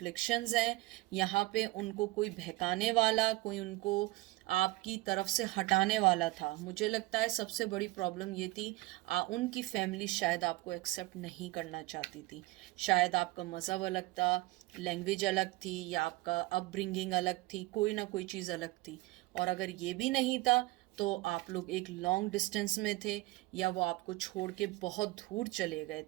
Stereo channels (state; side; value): quieter; left; 20.2 dB